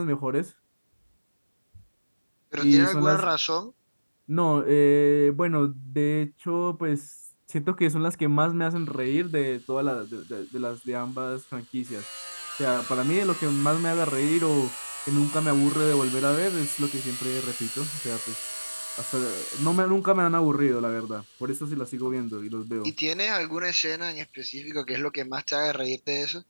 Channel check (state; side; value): inverted; both; correlation -1.00